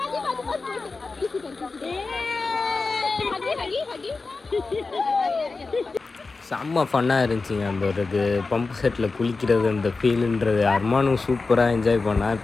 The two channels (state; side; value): quieter; right; 4.0 dB